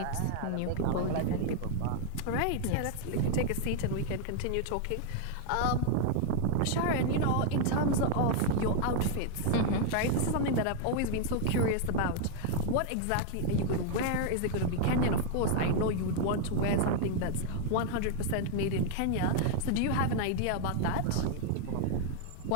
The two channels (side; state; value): both; different; correlation 0.00